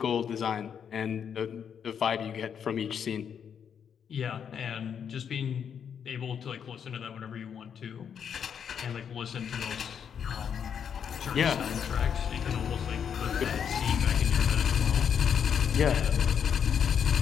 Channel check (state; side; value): quieter; right; 7.8 dB